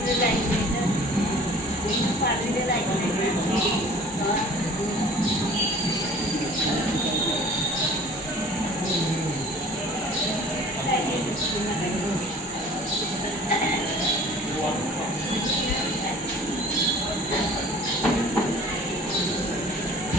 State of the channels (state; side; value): normal; both; correlation 0.47